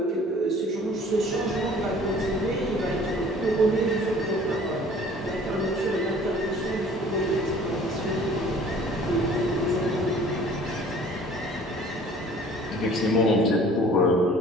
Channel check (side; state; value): both; normal; correlation 0.50